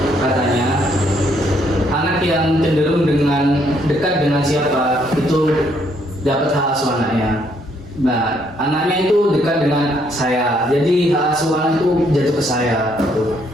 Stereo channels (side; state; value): both; normal; correlation 0.70